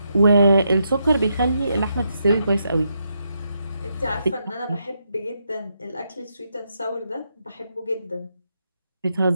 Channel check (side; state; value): both; inverted; correlation -0.81